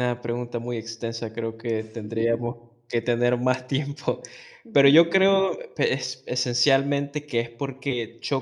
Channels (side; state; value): both; identical; correlation 1.00